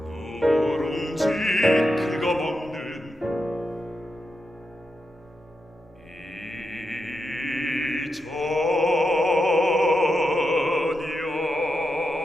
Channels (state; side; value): normal; both; correlation 0.87